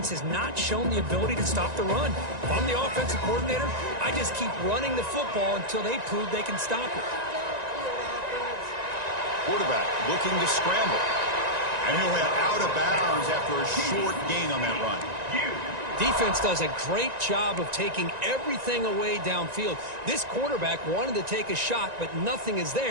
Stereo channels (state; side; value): late; left; 1.9 ms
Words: has not shown the ability to stop the run. If I'm the offensive coordinator, I just keep running the football until they prove they can stop it. Quarterback looking to scramble. And he'll head out of bounds after a short gain on that run. Defense does a great job of taking everything away downfield. This quarterback wanted to take a shot, but nothing is